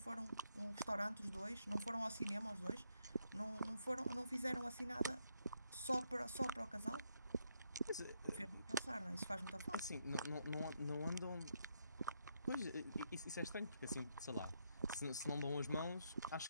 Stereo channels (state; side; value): inverted; both; correlation -0.77